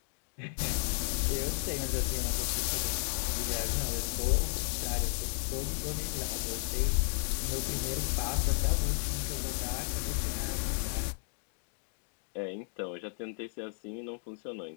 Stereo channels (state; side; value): silent; right; 55 dB below the other